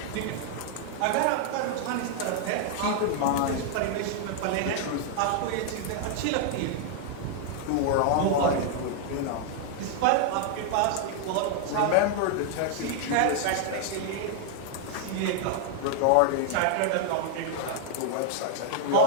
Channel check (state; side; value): different; both; correlation 0.00